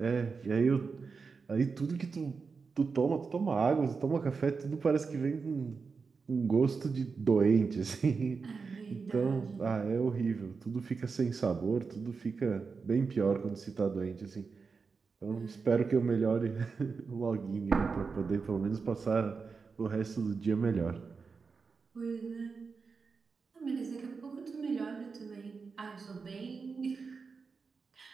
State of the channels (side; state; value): left; quieter; 5.0 dB